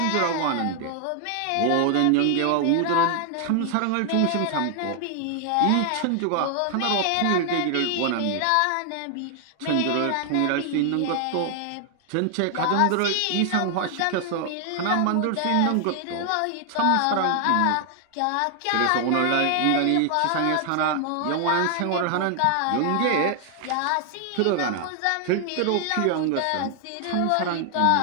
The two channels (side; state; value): both; different; correlation 0.00